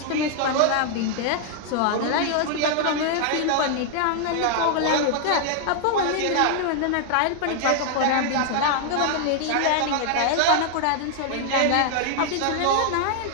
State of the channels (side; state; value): both; different; correlation 0.00